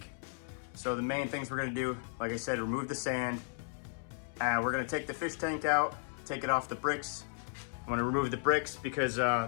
So the main things we're gonna do, like I said, remove the sand. We're gonna take the fish tank out, take it off the bricks. I'm gonna remove the bricks because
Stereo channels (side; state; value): right; silent; 55 dB below the other